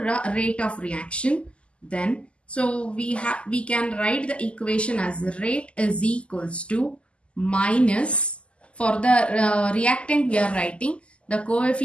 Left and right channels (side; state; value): right; late; 0.055 ms